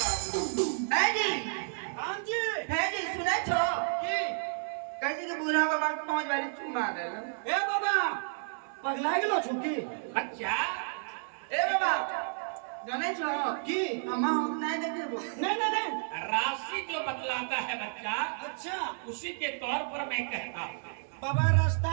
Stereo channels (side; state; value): left; silent; digital silence